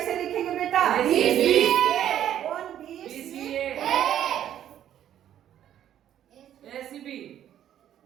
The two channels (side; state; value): left; quieter; 10.9 dB